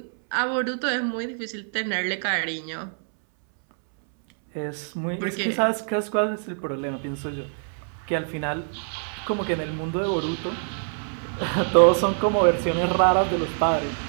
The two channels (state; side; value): silent; left; 62 dB below the other